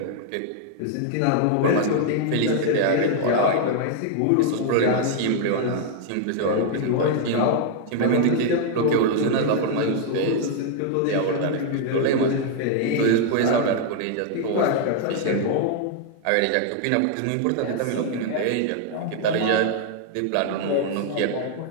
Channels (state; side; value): different; both; correlation 0.00